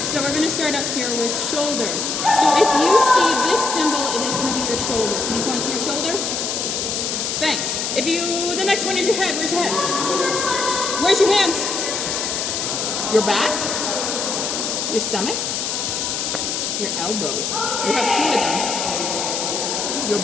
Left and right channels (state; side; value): noise; left; hiss, 1 dB below the sound